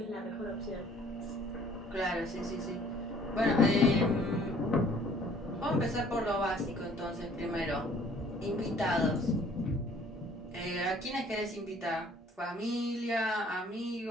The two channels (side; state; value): both; normal; correlation 0.57